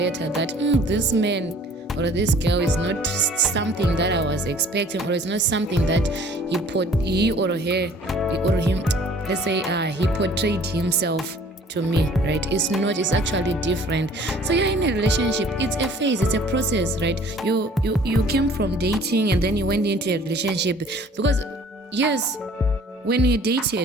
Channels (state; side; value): normal; both; correlation 0.52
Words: that this man or this girl is not something that I was expecting, or it's not something that he or him, let's say he portrayed himself to me, right? It's not, it's actually different. So you're in a relationship, it's a phase, it's a process, right? You came from dating and then you went into a relationship, because yes, when you